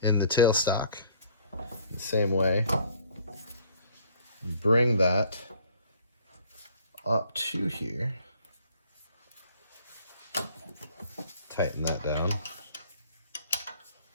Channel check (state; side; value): inverted; both; correlation -0.57